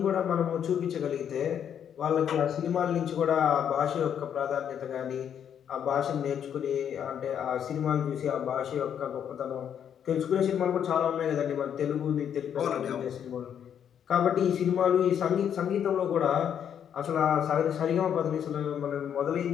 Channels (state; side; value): quieter; right; 8.8 dB